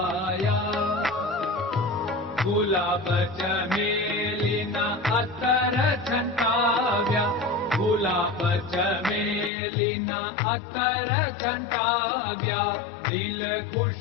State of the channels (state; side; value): drops out; right; at 9.5 s